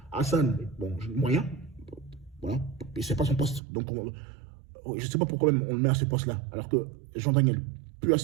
Hassan, bon, moyen. Voilà. Et c'est pas son poste. Donc, je ne sais pas pourquoi même on le met à ce poste-là. Alors que Jean-Daniel peut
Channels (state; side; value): drops out; left; at 3.6 s